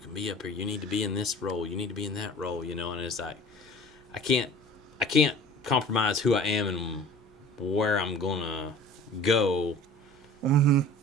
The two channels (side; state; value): both; normal; correlation 0.45